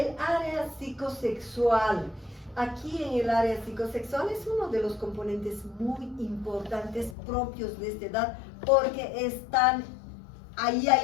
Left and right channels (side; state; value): right; drops out; at 7.2 s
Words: área psicosexual. Aquí en el área psicosexual es uno de los componentes muy importantes propios de esta edad, porque ahí